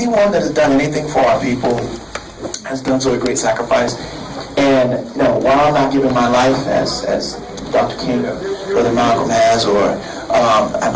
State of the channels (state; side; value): identical; both; correlation 1.00